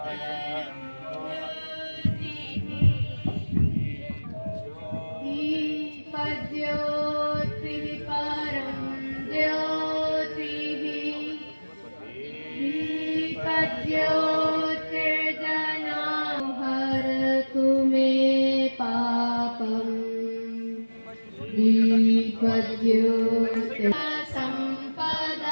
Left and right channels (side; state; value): both; inverted; correlation -1.00